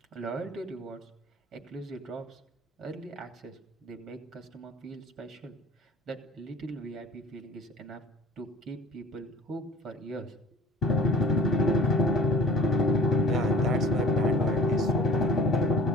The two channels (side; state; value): both; normal; correlation 0.47